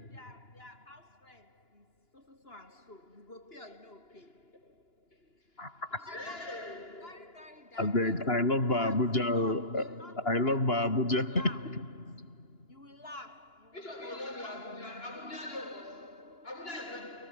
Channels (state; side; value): late; right; 2.9 ms